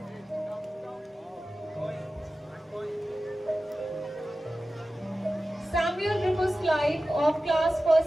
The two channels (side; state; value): both; normal; correlation 0.95